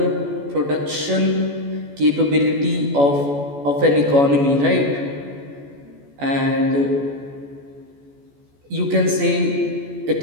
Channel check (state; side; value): late; left; 14 ms